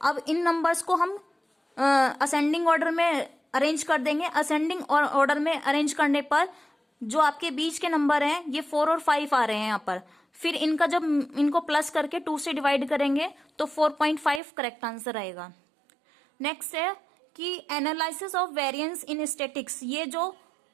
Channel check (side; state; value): left; drops out; at 14.4 s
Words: अब इन नंबर्स को हम असेंडिंग ऑर्डर में अरेंज कर देंगे। असेंडिंग ऑर्डर में अरेंज करने पर जो आपके बीच के नंबर हैं ये 4 और 5 आ रहे हैं यहाँ पर। फिर इनका जब इनको प्लस करके 2 से डिवाइड करेंगे तो 4.5 करेक्ट आंसर आएगा। नेक्स्ट है कि analysis of variance in statics,